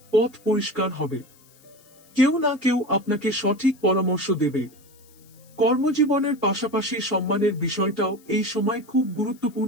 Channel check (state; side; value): noise; left; hiss, 28 dB below the sound